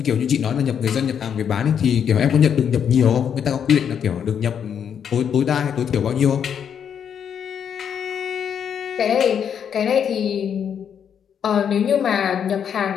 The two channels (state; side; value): quieter; right; 8.1 dB